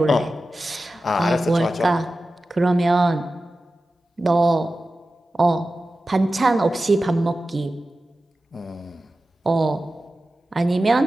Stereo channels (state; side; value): normal; both; correlation 0.94